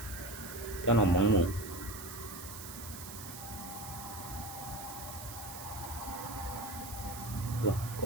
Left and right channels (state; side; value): noise; right; hiss, 11 dB below the sound